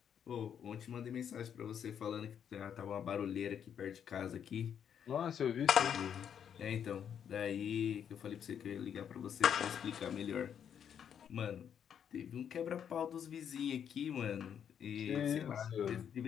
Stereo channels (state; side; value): quieter; right; 8.4 dB